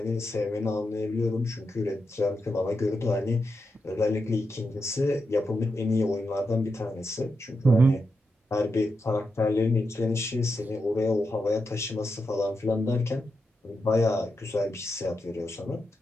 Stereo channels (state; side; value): normal; both; correlation 0.86